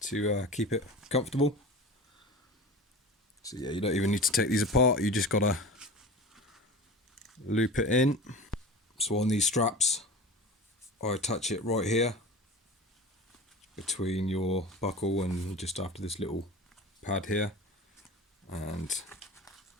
keep it comfortable. So yeah, you don't even need to take these apart, you just gotta loop it in. So on these straps, I attach it right here between your buckle and just after this little pad here, and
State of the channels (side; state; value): both; normal; correlation 0.34